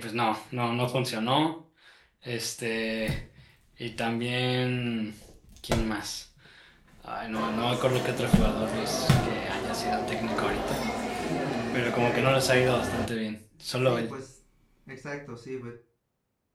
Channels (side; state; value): both; identical; correlation 1.00